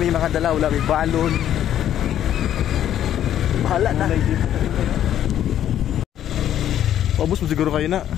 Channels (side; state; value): right; quieter; 11.0 dB